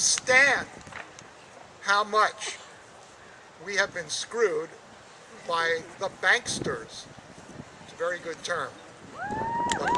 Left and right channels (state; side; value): identical; both; correlation 1.00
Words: how much we have been screwed by the banksters. It's a very good term. The